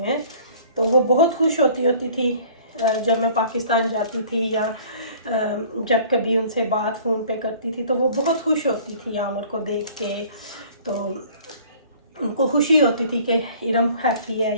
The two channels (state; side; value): inverted; both; correlation -0.51